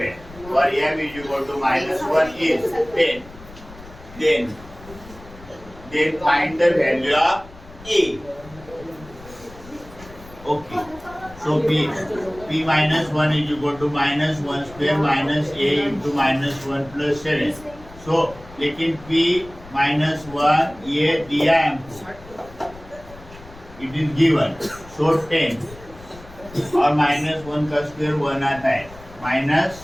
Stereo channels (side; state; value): left; noise; rumble, 19 dB below the sound